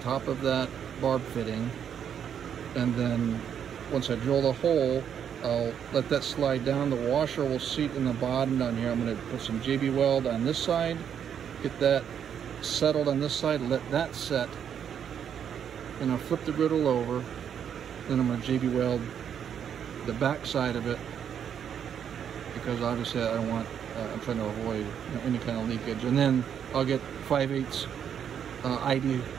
of that barb fitting. And then once I drill the hole, I'll let that slide down. The washer will seat in the bottom down here. I'm going to put some JB Weld on this side, get that settled on this side, let that set. Then I'll flip the griddle over. Then I'm going to JB Weld the back side of it, because obviously I don't want, I'm trying to avoid any kind of leakage. And then I'll get 5/8 ID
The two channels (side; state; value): left; quieter; 8.5 dB